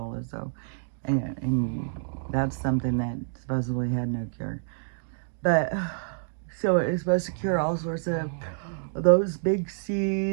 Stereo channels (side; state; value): left; silent; digital silence